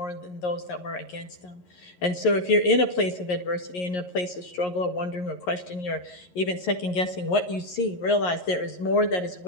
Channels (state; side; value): late; right; 11 ms